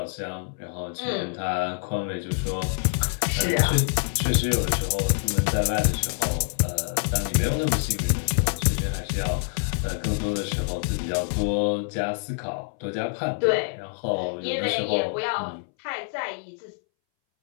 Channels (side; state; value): right; silent; 61 dB below the other